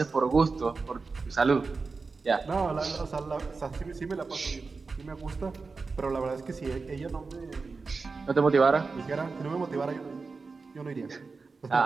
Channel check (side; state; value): left; quieter; 4.3 dB